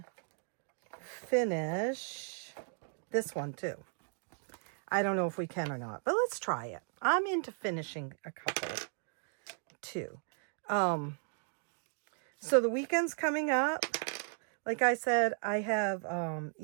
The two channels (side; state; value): left; silent; 54 dB below the other